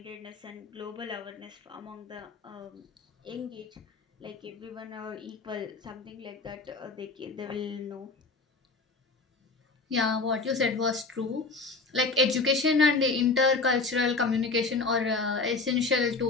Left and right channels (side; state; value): right; quieter; 3.9 dB